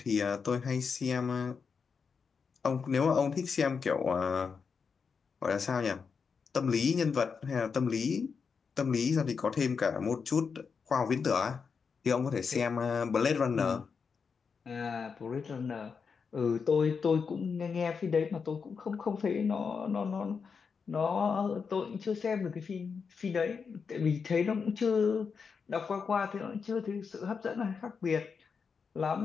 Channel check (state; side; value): quieter; right; 5.7 dB